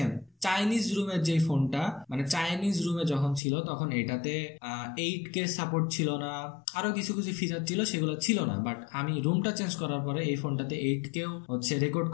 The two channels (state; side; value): drops out; right; at 3.4 s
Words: চাইনিজ রুমের যে ফোনটা, মানে চাইনিজ রুমে যখন ছিল তখন এটাতে 8K সাপোর্ট ছিল না, আরো কিছু ফিচার ছিল, সেগুলো ছিল না। বাট আমি রুমটা চেঞ্জ করার পরে এই ফোনটাতে 8Kও হচ্ছে রেকর্ড